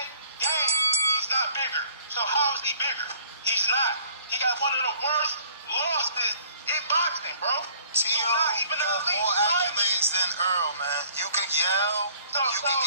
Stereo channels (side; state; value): both; inverted; correlation -0.56